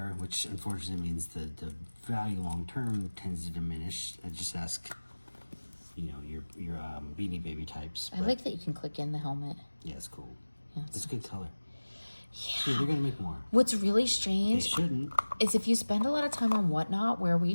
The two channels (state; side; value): inverted; both; correlation -1.00